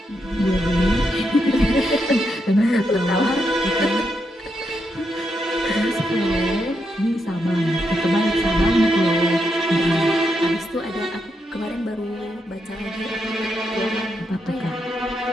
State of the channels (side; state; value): both; normal; correlation 0.82